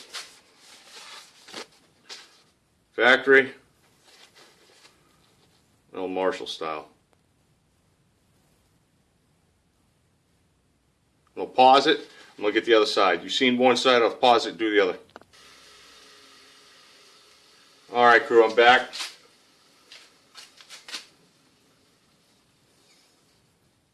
factory, old Marshall style. I'll pause it. I'm gonna get the other side. You've seen one side. I'll pause it. Do the other. All right, crew. I'm back.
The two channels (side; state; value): both; identical; correlation 1.00